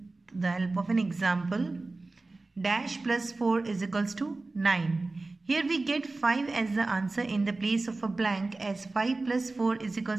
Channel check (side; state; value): left; quieter; 3.3 dB